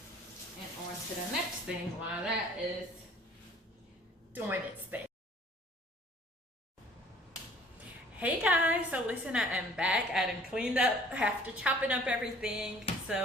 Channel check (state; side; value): normal; both; correlation 0.54